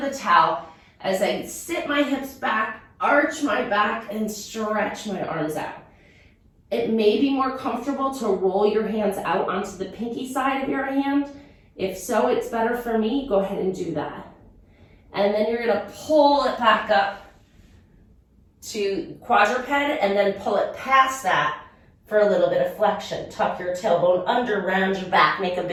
towel as I sit my hips back, arch my back, and stretch my arms out. It may be more comfortable to roll your hands out onto the pinky side of your hand. If so, it's better for me. Go ahead and do that. And then you're going to pull it back up to quadruped and then pull it past that for a little bit of flexion. Tuck your tailbone under, round your back, make a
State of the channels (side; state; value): both; identical; correlation 1.00